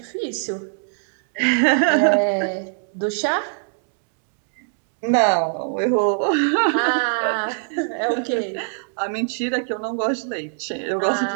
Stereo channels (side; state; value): left; silent; digital silence